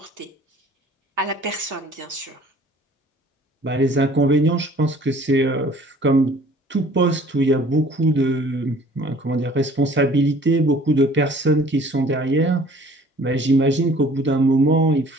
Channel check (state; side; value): normal; both; correlation 0.52